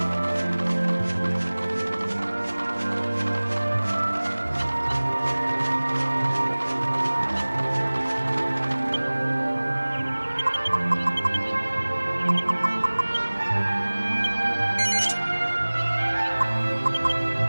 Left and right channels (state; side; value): inverted; both; correlation -1.00